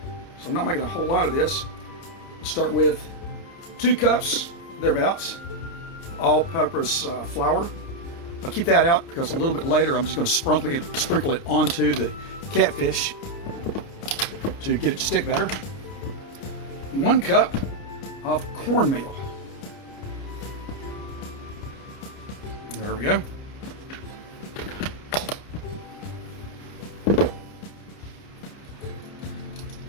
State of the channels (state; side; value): late; right; 29 ms